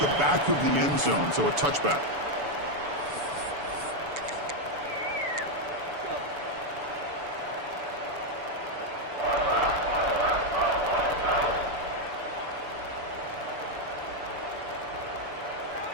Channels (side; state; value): left; late; 6.9 ms